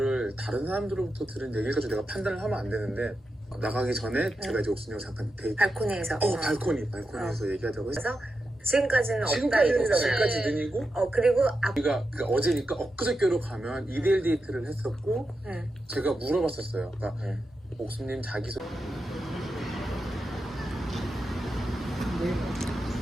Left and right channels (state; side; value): normal; both; correlation 0.88